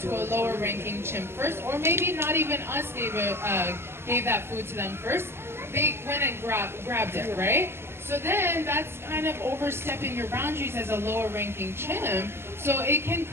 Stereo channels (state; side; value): late; left; 0.12 ms